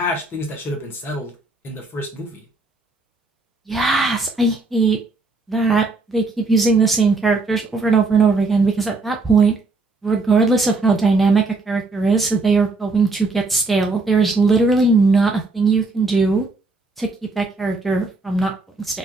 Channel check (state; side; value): quieter; left; 3.6 dB